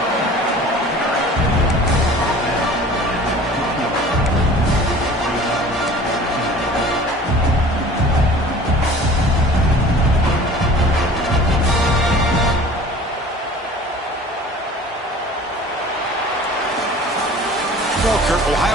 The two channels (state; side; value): normal; both; correlation 0.44